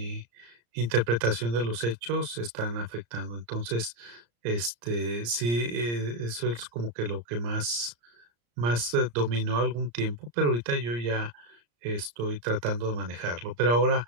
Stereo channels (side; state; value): left; late; 34 ms